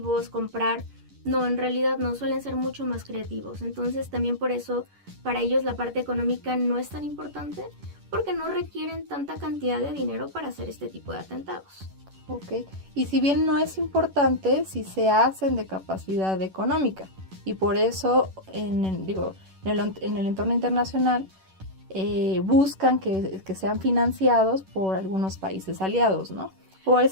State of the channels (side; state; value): left; late; 11 ms